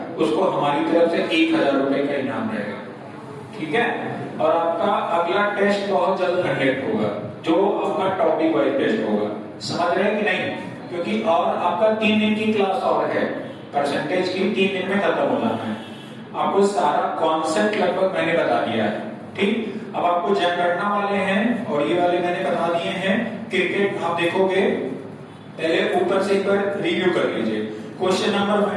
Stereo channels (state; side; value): identical; both; correlation 1.00